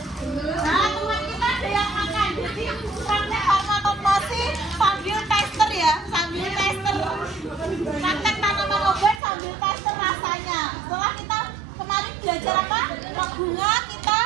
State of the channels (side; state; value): left; drops out; at 9.2 s